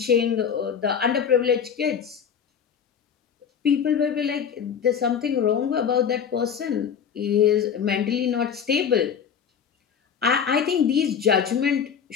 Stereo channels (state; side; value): quieter; right; 7.4 dB